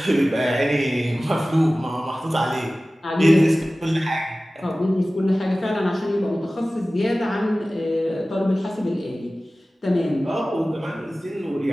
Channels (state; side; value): normal; both; correlation 0.97